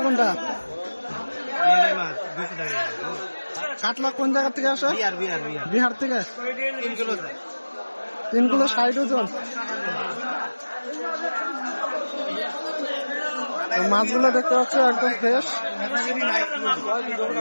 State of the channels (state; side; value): inverted; both; correlation -1.00